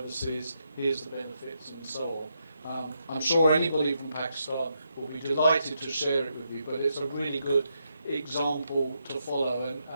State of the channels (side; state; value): both; inverted; correlation -0.81